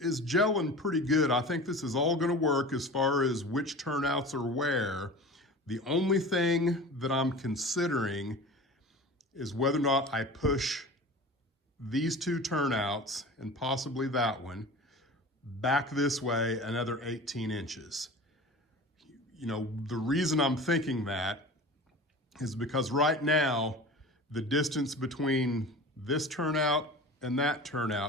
gelling pretty good. I think this is all going to work as far as which turnouts are where. The only thing that I'm considering is whether or not I push these 2 turnouts, and possibly that one, back this way another 18 inches. The reason I'm thinking that is because right now, the distance between this turnout and that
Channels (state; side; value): normal; both; correlation 0.36